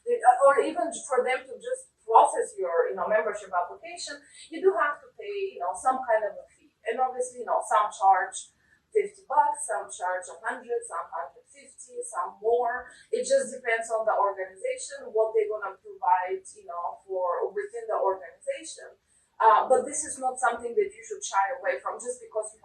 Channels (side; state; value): both; identical; correlation 1.00